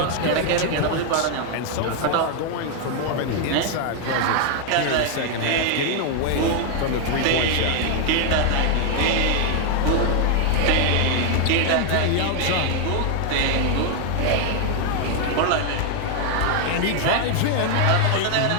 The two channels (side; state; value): both; different; correlation 0.00